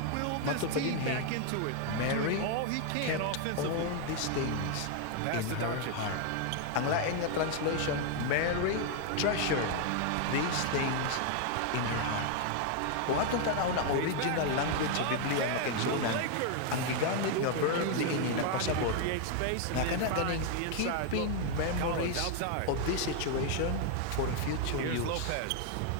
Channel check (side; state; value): both; different; correlation 0.00